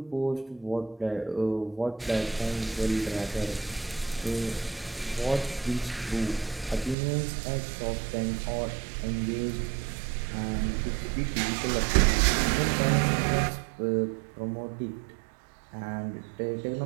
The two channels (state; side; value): drops out; left; at 7.0 s